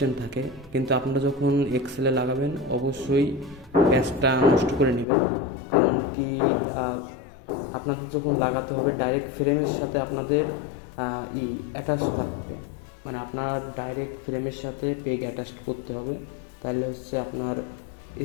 থাকে, কিন্তু আপনারা যখন এক্সেলে লাগাবেন অবশ্যই প্যাচটা নষ্ট করে নেবেন। কারণ কি, আপনাদের যখন লাগাতে হবে ডাইরেক্ট ফ্রেমের সাথে আপনাদের অ্যাটাচ থাকবে, মানে আপনার ডাইরেক্ট ফ্রেমের সাথে পেগ অ্যাটাচ করতে হবে। তাহলে হচ্ছে আপনার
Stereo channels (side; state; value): right; drops out; at 5.1 s